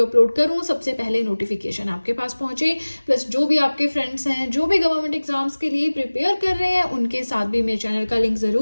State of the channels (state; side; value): inverted; both; correlation -1.00